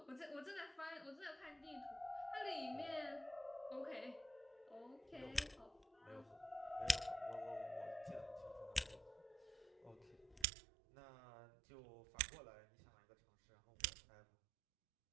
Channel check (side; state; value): left; drops out; at 10.5 s